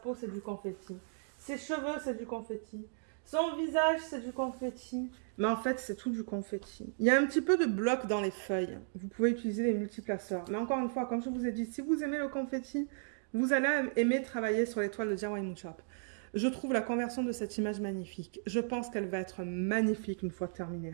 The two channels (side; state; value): left; silent; digital silence